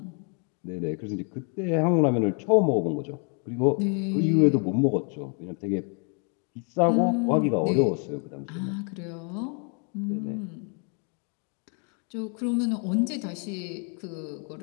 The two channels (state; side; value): quieter; right; 39.2 dB